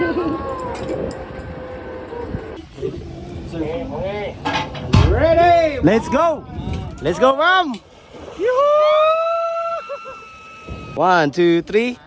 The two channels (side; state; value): both; identical; correlation 1.00